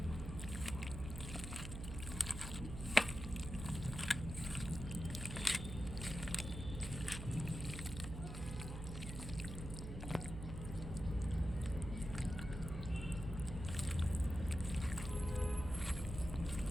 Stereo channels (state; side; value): noise; right; hum, 7 dB below the sound